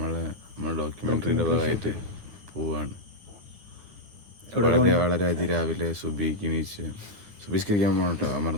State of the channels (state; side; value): late; left; 9.7 ms